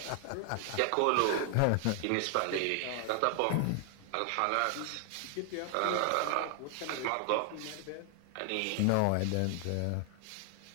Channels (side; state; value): both; different; correlation 0.00